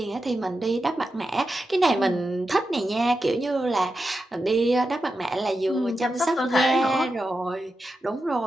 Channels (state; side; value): normal; both; correlation 0.89